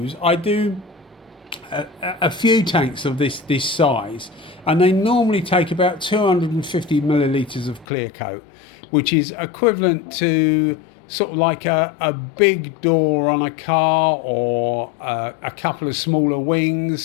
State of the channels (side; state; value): right; drops out; at 7.9 s